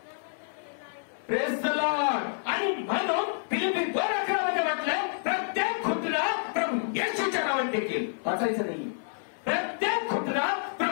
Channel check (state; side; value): silent; right; 55 dB below the other